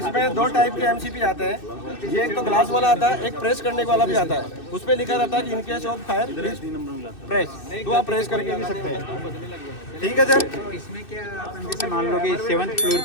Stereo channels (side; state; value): right; late; 2.6 ms